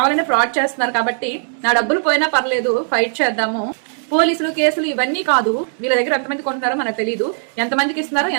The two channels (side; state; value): left; silent; 67 dB below the other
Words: ఫ్రాడ్ చేస్తున్నారు కాబట్టి నా డబ్బులు పోయినా పర్లేదు, ఫైట్ చేద్దాము. పోలీసులు కేసులు ఇవన్నీ కాదు, వీళ్ళ దగ్గర ఎంతమంది కొంటున్నారో మనకు తెలియదు, ఎంతమందికి ఇస్తున్నారో